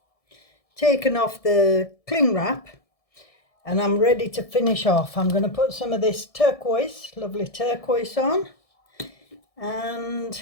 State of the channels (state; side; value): late; right; 1.7 ms